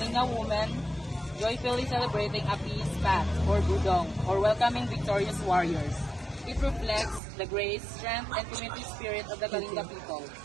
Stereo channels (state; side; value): drops out; left; at 7.2 s